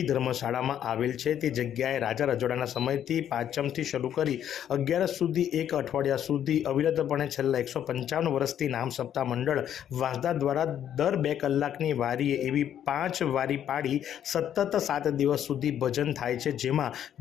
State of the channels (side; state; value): right; quieter; 10.1 dB